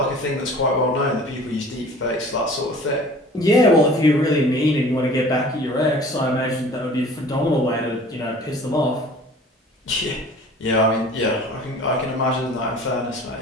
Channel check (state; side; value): normal; both; correlation 0.46